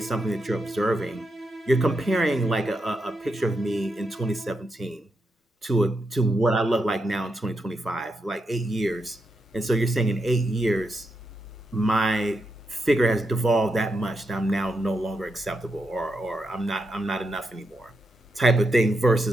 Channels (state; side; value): normal; both; correlation 0.84